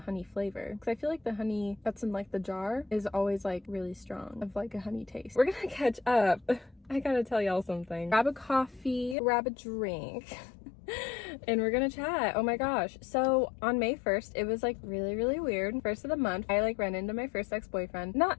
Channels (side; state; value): right; drops out; at 9.2 s